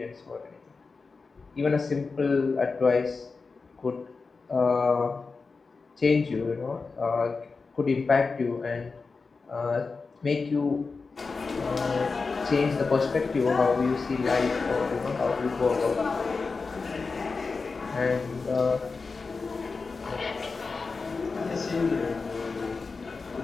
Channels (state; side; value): quieter; right; 4.4 dB